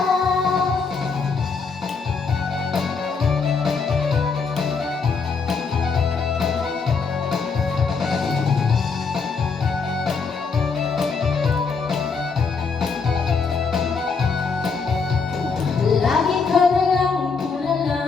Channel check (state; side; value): quieter; right; 5.0 dB